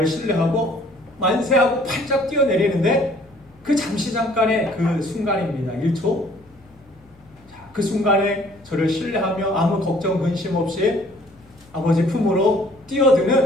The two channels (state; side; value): noise; left; hum, 29 dB below the sound